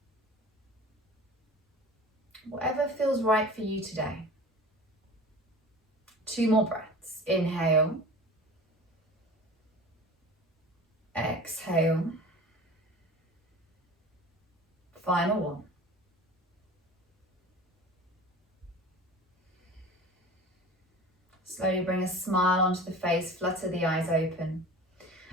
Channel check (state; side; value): normal; both; correlation 0.39